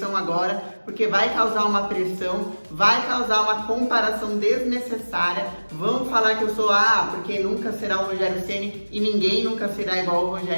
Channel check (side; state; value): both; inverted; correlation -1.00